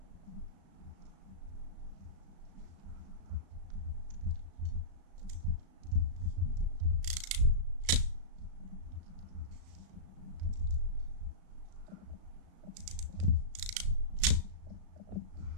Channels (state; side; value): late; left; 35 ms